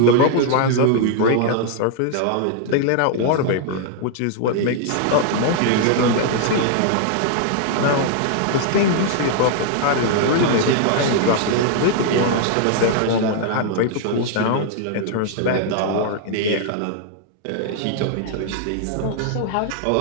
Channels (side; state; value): both; different; correlation 0.00